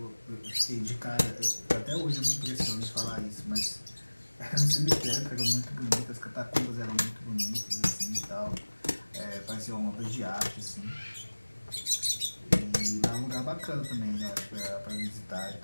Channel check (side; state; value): both; inverted; correlation -1.00